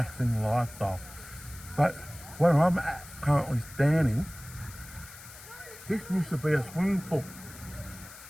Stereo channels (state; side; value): noise; left; hiss, 17 dB below the sound